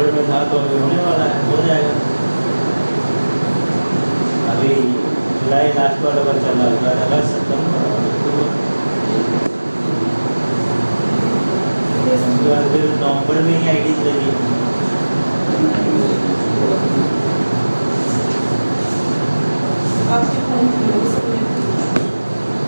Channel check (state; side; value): inverted; both; correlation -1.00